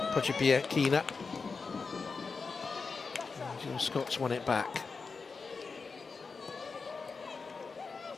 Pochibiakina. Jill Scott's won it back.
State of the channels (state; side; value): quieter; right; 4.7 dB